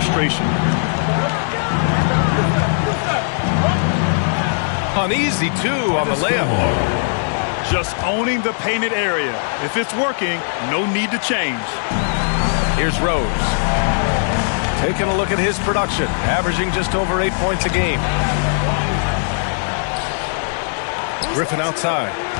Uneasy, too, on the layup. Just owning the painted area. If it's working, no need to change. Here's Rose. Taking a look at his production, averaging just over 8 points a game. Griffin outside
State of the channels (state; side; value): silent; right; digital silence